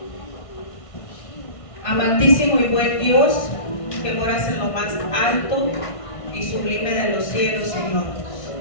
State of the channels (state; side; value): late; right; 1.5 ms